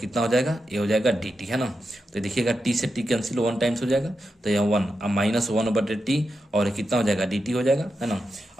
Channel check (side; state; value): both; normal; correlation 0.88